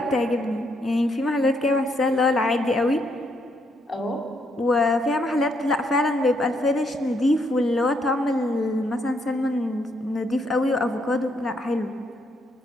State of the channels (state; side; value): normal; both; correlation 0.74